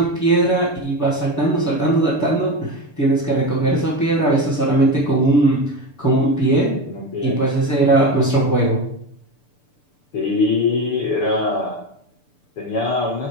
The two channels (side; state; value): right; late; 6.8 ms